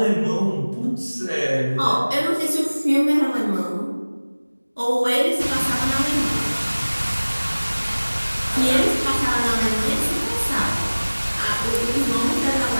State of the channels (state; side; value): inverted; both; correlation -1.00